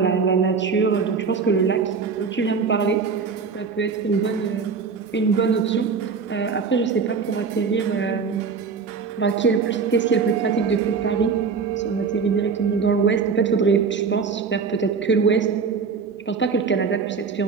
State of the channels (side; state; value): left; quieter; 5.4 dB